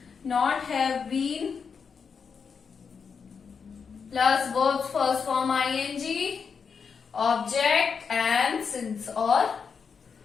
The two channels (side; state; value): right; quieter; 6.0 dB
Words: Not have been plus verb first form ING, object and since और